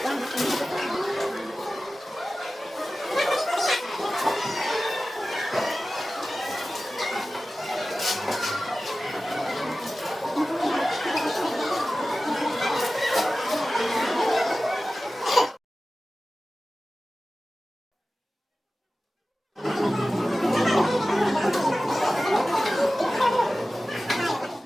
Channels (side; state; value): both; normal; correlation 0.96